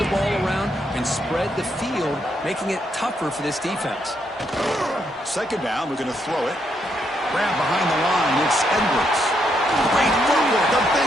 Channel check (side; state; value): both; normal; correlation 0.77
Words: ball around and spread the field, making it tougher for this defense. Second down, we're going to throw it. Grab behind the line, it's Edwards. Great footwork, a